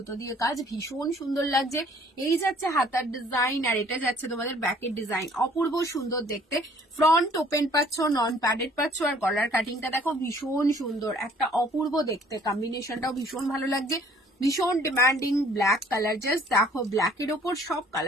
দিয়ে কাজ, ভীষণ সুন্দর লাগছে। এই যাচ্ছে হাতার ডিজাইন, আর এটা যাচ্ছে তোমাদের ব্যাকের ডিজাইন, অপূর্ব সুন্দর দেখতে। ফ্রন্ট ওপেন পাচ্ছ, নন প্যাডেড পাচ্ছ, আর গলার কাটিংটা দেখো ভীষণ সুন্দর, একটা অপূর্ব দেখতে। কম্বিনেশনটাও ভীষণ ভালো লাগছে, ভীষণ ডিমান্ডিং ব্ল্যাক কালার। জাস্ট দেখো ব্ল্যাকের ওপর সব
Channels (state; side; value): normal; both; correlation 0.57